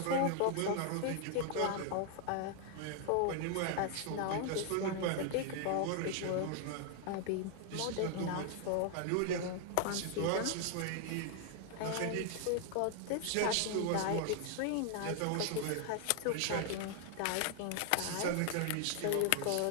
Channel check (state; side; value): different; both; correlation 0.00